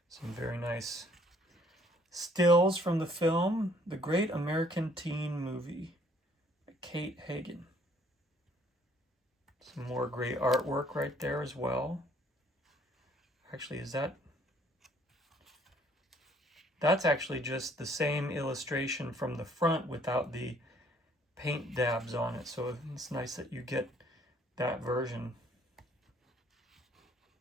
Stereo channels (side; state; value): both; normal; correlation 0.62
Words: Some very nice stills from the film, The Great American Teen Movie, by Kate Hagen. Some more great artwork right there as well. Actually, that's actually just the same illustration from the front without the paint dabs on it. So it's nice that you get that version.